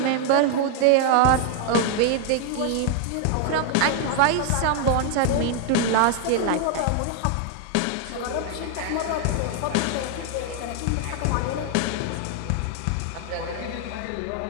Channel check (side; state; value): both; different; correlation 0.00